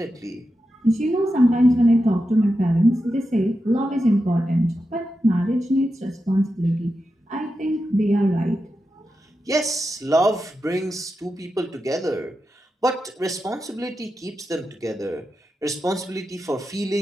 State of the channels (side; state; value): both; normal; correlation 0.89